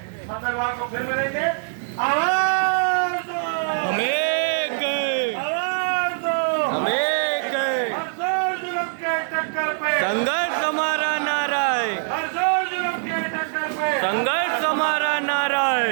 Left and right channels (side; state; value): left; silent; digital silence